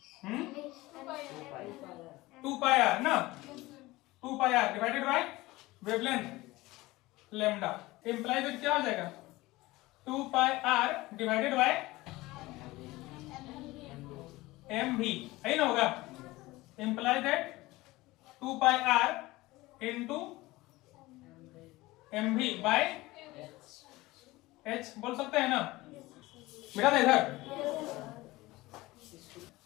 2 पाई आर ना, 2 pi R divided by wavelength lambda, imply that क्या हो जाएगा 2 pi R divided by M V, है ना, होगा, imply that 2 pi R into M V by H, बोल सकते हैं ना, बेटा था इधर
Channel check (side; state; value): right; quieter; 19.7 dB